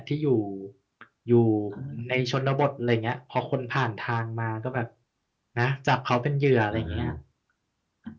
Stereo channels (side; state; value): both; identical; correlation 1.00